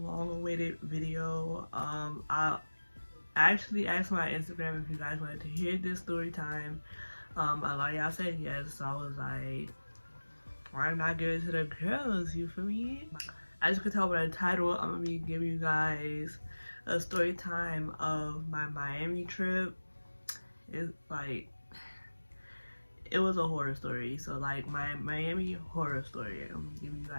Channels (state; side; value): inverted; both; correlation -1.00